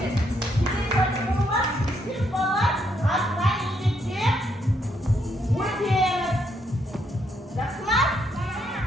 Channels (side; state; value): both; normal; correlation 0.75